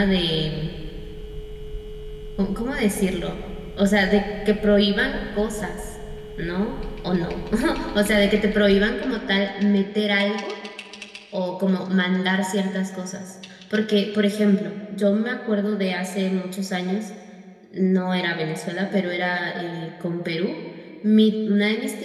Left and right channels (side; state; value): both; identical; correlation 1.00